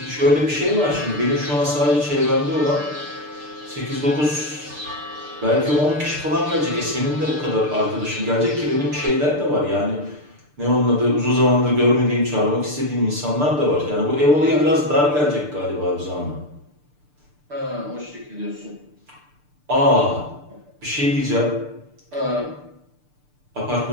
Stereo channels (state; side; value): late; left; 6.7 ms